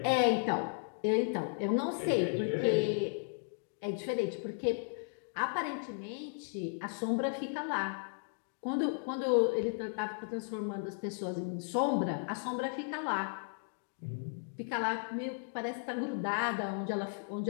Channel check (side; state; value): right; silent; digital silence